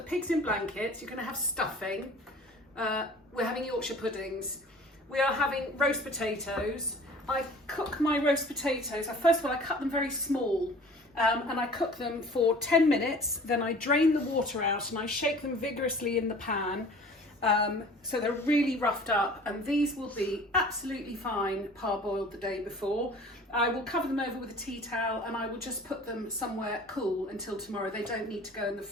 pigs in blankets, you're going to have stuffing, we're having Yorkshire puddings, we are having roast potatoes. I cook my roast potatoes, first of all I cut them very small and I cook them for 10 minutes, then I drain the water out and I shake them vigorously in the pan. So they're really roughed up, and these will be absolutely fine parboiled the day before. I will cover them over with a tea towel and I will just put them somewhere cool until tomorrow. They don't need to go in the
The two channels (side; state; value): both; normal; correlation 0.46